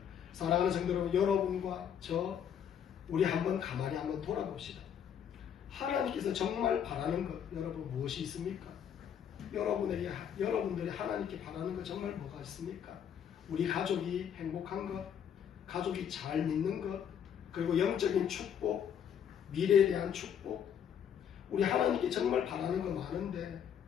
사랑하는 성도 여러분, 여러분과 저 우리 한번 가만히 한번 돌아봅시다. 하나님께서 정말 바라는 것 여러분 무엇이 있습니까? 여러분들이 하나님께 바라는 것 정말 뭐가 있습니까? 우리 가족이 행복한 것, 가족이 잘 믿는 것, 그리고 영적인 축복, 미래에 대한 축복. 우리 하나님께 정말 바라는 거 많은데,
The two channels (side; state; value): right; quieter; 8.6 dB